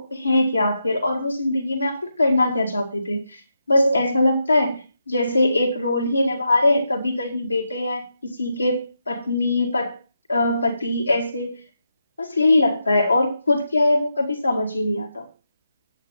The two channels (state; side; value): inverted; both; correlation -0.84